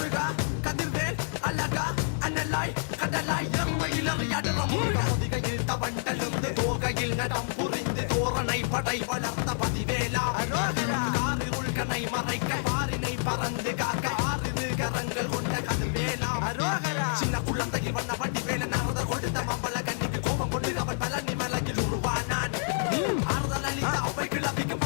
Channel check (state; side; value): silent; right; digital silence